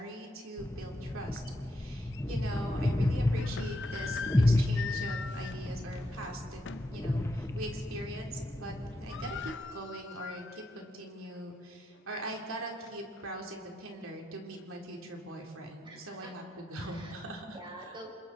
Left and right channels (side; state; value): both; normal; correlation 0.82